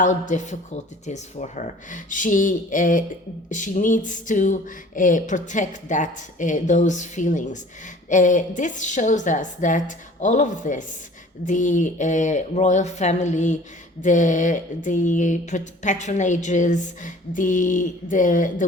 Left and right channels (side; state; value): both; normal; correlation 0.48